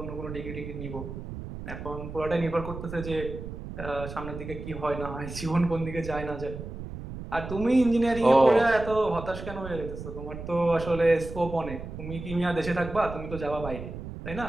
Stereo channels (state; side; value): noise; right; rumble, 9 dB below the sound